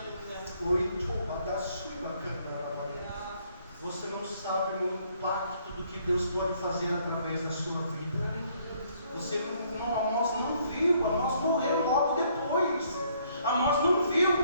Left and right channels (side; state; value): both; inverted; correlation -0.66